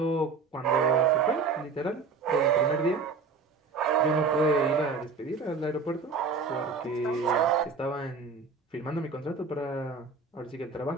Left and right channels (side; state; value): left; quieter; 4.7 dB